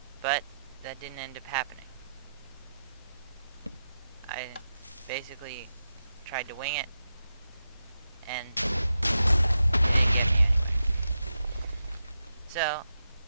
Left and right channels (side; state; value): both; inverted; correlation -0.88